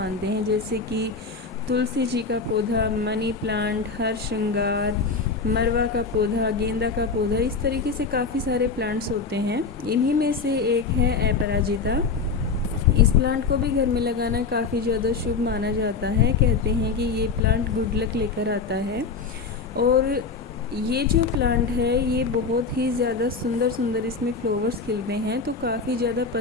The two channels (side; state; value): right; quieter; 4.7 dB